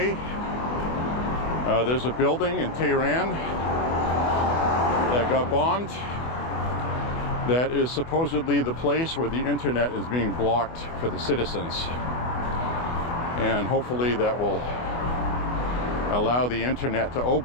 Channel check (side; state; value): right; late; 24 ms